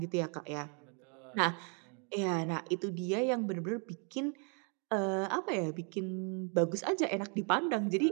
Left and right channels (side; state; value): left; quieter; 36.8 dB